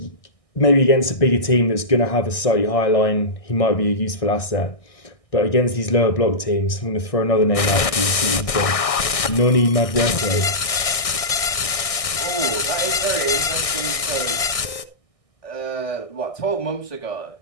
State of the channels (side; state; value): right; late; 1.6 ms